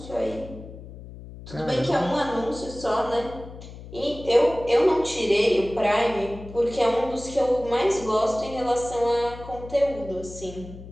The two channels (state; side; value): noise; left; hum, 15 dB below the sound